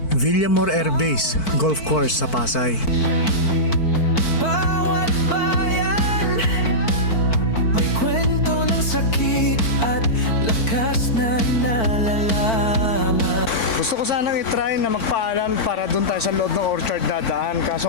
Villamor Air Base Golf Course sa Pasay. bawat bayan may kwento ng sakit at lakas na nalalaman. Gusto ko sanang itry na magpaalam para dun tayo sa loob ng orchard dadaan. Kaso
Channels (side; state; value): right; late; 4.5 ms